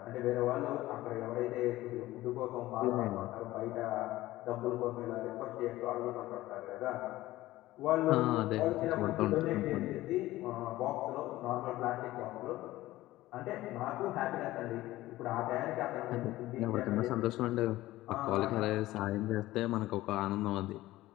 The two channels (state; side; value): quieter; right; 16.8 dB